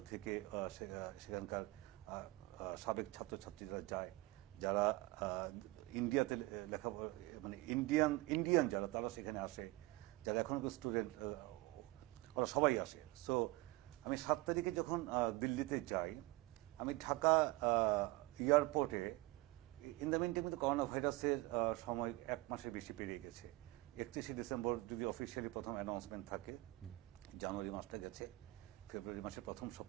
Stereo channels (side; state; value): left; quieter; 20.9 dB